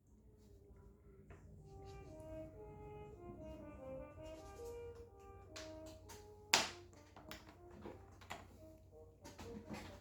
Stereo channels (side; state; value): both; identical; correlation 1.00